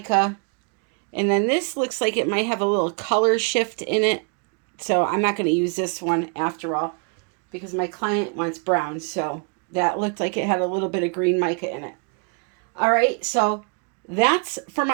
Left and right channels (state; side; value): quieter; left; 37.3 dB